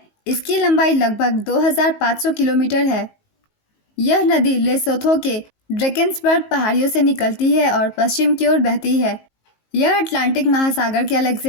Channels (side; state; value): right; late; 19 ms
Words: इसकी लंबाई लगभग 2500 किलोमीटर है। यह नदी लेसोथो के ड्रेकेंसबर्ग पहाड़ियों से निकलती है और पश्चिम की ओर बहती है। यह अटलांटिक महासागर के